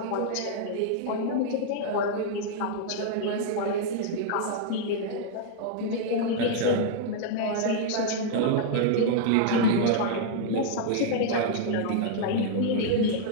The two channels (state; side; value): different; both; correlation -0.01